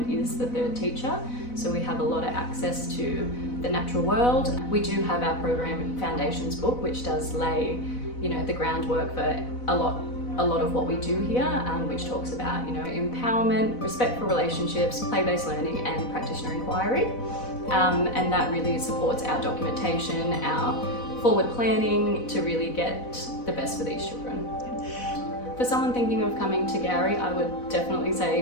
is the third teacher, so we have a lot of access to the natural world. We do have our program foundations book, which does lay the groundwork for a lot of what we do here, which talks about empowerment, respect for relationships, play-based learning and practitioner inquiry, and that really supports our documentation, our forward planning to really get the best for these children. For someone thinking of coming to Gowrie, I would definitely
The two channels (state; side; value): late; right; 4.0 ms